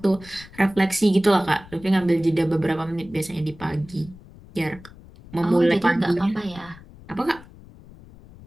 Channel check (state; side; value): noise; left; rumble, 21 dB below the sound